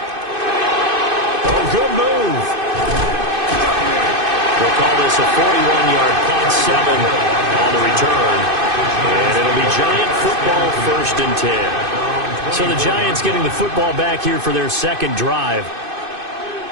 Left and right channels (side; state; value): left; late; 2.5 ms